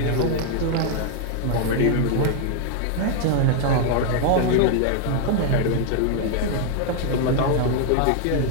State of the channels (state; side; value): different; both; correlation 0.00